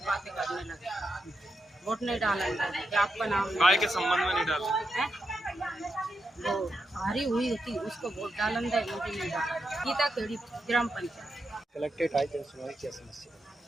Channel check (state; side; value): normal; both; correlation 0.85